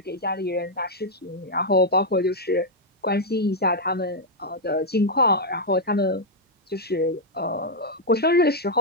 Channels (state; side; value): normal; both; correlation -0.02